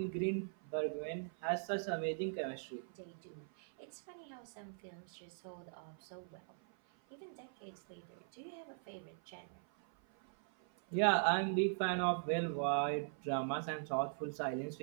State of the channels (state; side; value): silent; left; 50 dB below the other